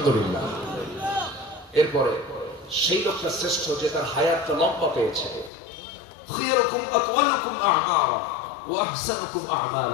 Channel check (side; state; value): right; drops out; at 5.5 s